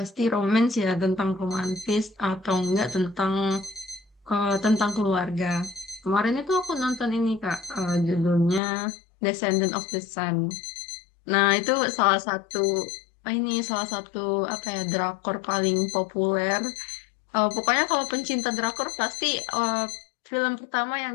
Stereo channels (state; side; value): drops out; right; at 8.6 s